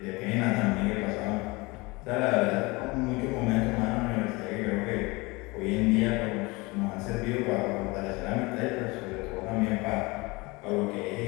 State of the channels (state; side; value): quieter; right; 24.5 dB